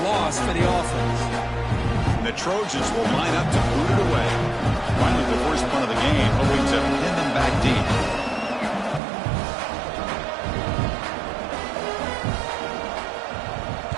loss for the offense. And the Trojans will line up to boot it away. Finally, the first punt of the game, hoping to pin them back deep.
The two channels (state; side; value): drops out; left; at 9.0 s